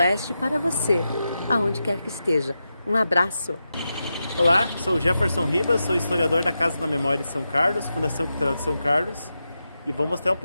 para você, aonde quer que esteja. Um abraço! Olá, sou o Jefferson Ribas, sou historiador da Casa da Memória de São Carlos, Fundação Cultural de São Carlos, e vou mostrar um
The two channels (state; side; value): inverted; both; correlation -0.89